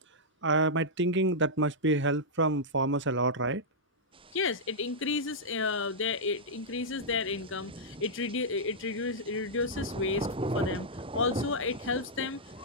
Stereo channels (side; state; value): both; normal; correlation -0.09